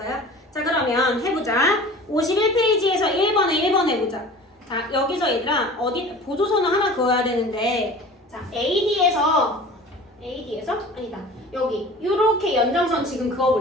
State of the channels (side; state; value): both; normal; correlation 0.41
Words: 자, 그러면 해보자. 51페이지에서 1번에 해보자. 자, 여기서 얘들아 어디 보조선을 하나 그어야 되는데, 자, AD에서 아니다, 여기 요렇게 연장선 지금